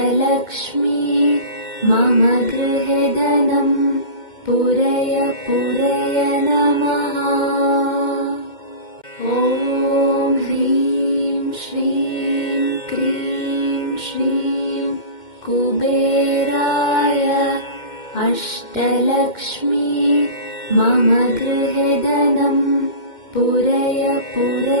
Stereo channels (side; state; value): right; late; 2.1 ms